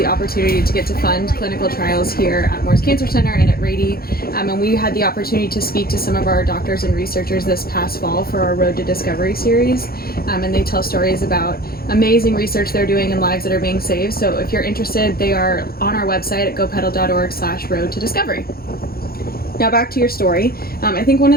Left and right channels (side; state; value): right; late; 0.44 ms